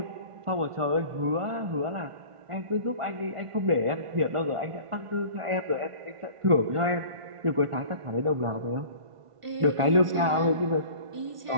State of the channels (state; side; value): late; left; 1.5 ms